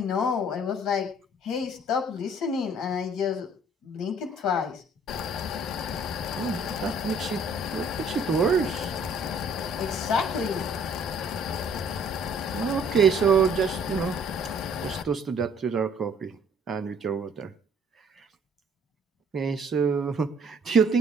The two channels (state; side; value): normal; both; correlation 0.58